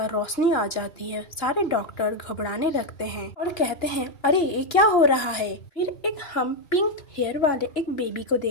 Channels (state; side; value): late; right; 2.9 ms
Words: रोशनी आ जाती है। सारे डॉक्टर घबराने लगते हैं और कहते हैं अरे ये क्या हो रहा है। फिर एक हम पिंक हेयर वाले एक बेबी को